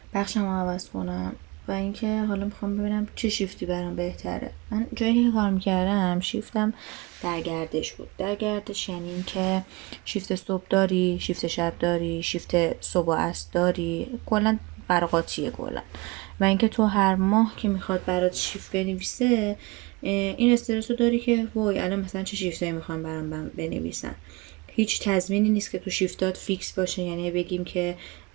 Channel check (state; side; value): quieter; left; 24.6 dB